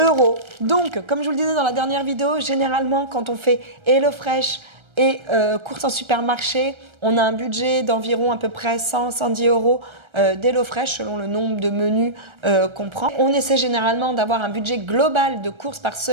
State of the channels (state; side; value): late; left; 1.3 ms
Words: Donc, comme je vous le disais dans la dernière vidéo, généralement quand on fait HelloFresh et courses en supermarché, on a un budget d'environ à peu près 100-110 € d'HelloFresh selon le nombre de menus qu'on prend. On essaie généralement d'avoir un budget global de courses par